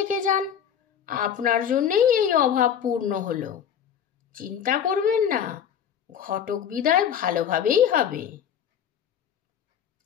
যান, আপনার জন্যেই এই অভাব পূর্ণ হলো। চিন্তা করবেন না, ঘটক বিদায় ভালোভাবেই হবে।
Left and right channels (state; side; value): quieter; right; 8.7 dB